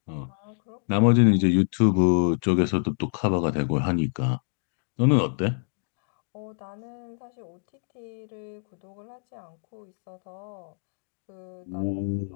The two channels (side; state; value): right; silent; digital silence